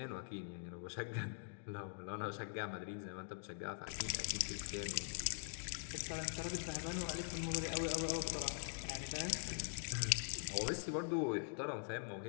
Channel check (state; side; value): silent; right; digital silence